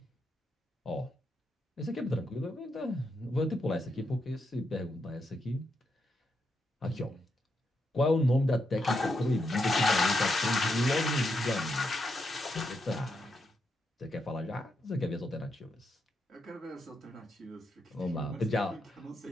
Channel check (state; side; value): normal; both; correlation 0.82